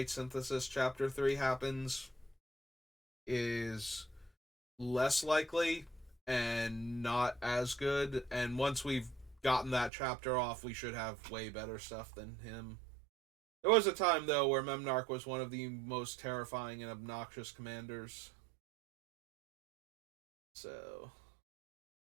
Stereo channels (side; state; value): left; drops out; at 9.9 s